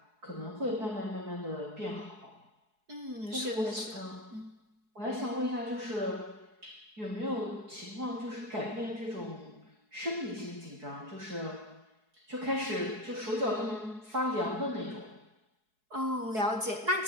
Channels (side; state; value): left; late; 4.7 ms